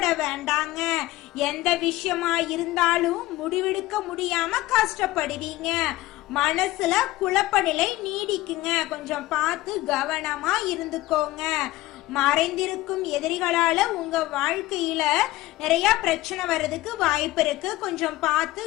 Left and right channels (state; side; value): quieter; right; 17.7 dB